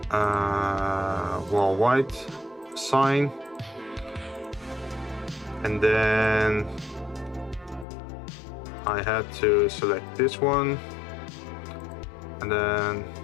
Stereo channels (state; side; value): drops out; right; at 7.9 s